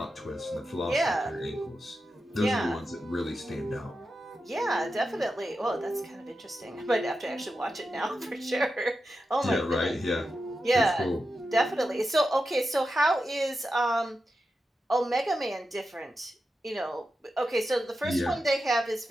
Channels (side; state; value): both; normal; correlation 0.90